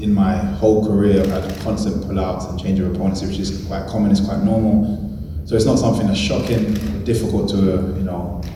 in my whole career, I've had constant pullouts and change of opponents, which is quite common, it's quite normal. So it's not something that's shocking or difficult to,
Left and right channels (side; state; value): both; identical; correlation 1.00